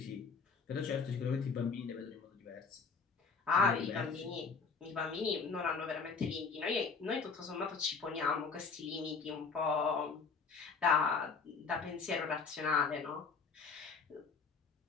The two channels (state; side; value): quieter; right; 5.1 dB